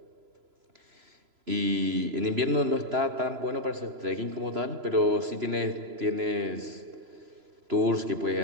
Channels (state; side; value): late; left; 3.0 ms